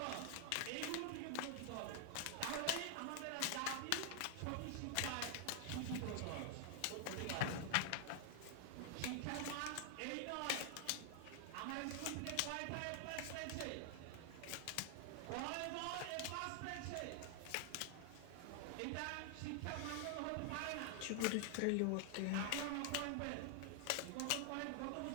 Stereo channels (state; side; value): different; both; correlation 0.00